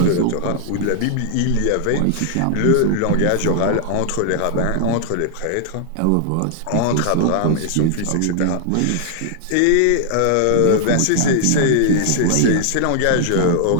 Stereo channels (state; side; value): different; both; correlation -0.01